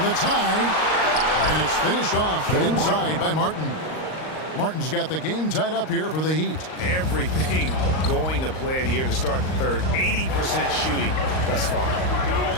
the tie. And it's finished off inside by Martin. Martin's got the game tied up here for the Heat. Everything going to plan here to start the third. 80% shooting thus far.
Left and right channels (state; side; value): late; right; 38 ms